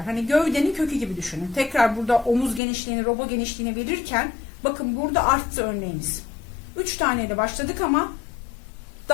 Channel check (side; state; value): right; drops out; at 2.6 s